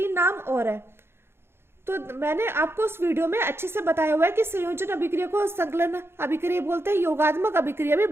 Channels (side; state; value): left; late; 0.12 ms